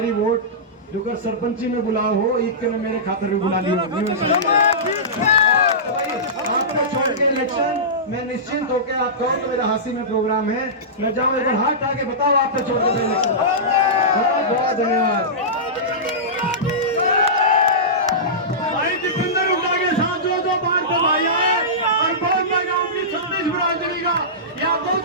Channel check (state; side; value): normal; both; correlation -0.17